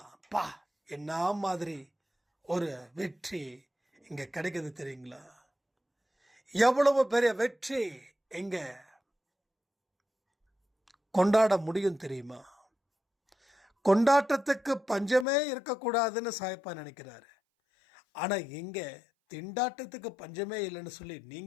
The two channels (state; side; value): drops out; right; at 15.2 s